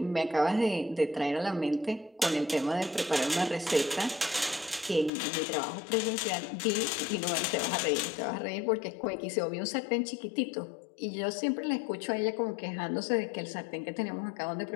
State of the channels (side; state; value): right; drops out; at 5.1 s